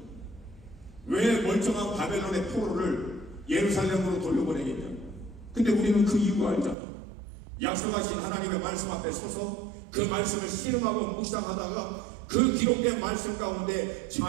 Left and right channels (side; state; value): left; drops out; at 6.8 s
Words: 왜 멀쩡한 바벨론의 포로를 예루살렘으로 돌려보내겠냐? 근데 우리는 그 이유 알잖아. 약속하신 하나님의 말씀 앞에 서서 그 말씀을 실험하고 묵상하다가 그 기록된 말씀 가운데